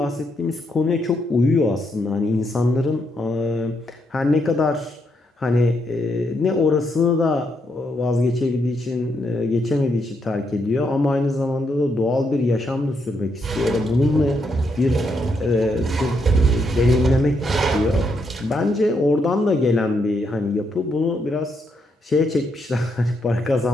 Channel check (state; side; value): normal; both; correlation 0.78